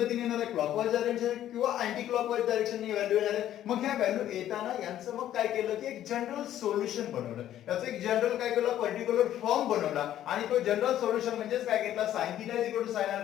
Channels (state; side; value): quieter; right; 11.9 dB